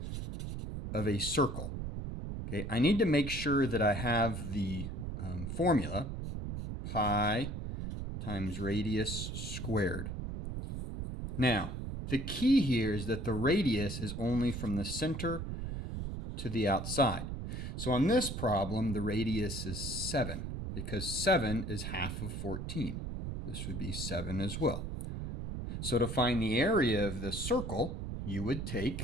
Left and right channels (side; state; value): right; noise; rumble, 5 dB below the sound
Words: of a circle, okay, I need to make sure that I have the formula pi times radius squared. Now, the key here is that the radius is only from the center to the outside. So on this problem, the radius is 7 because 7 is half of 14. This would be 7 as well. So to find the area of the circle, you would